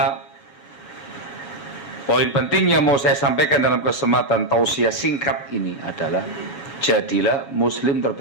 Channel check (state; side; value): late; right; 7.5 ms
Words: poin penting yang mau saya sampaikan dalam kesempatan tausiah singkat ini adalah, jadilah muslim